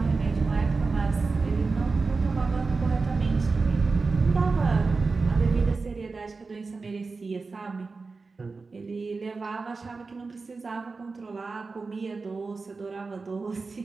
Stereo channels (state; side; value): quieter; left; 4.1 dB